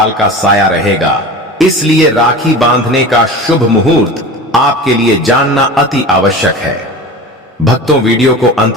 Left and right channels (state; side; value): normal; both; correlation 0.33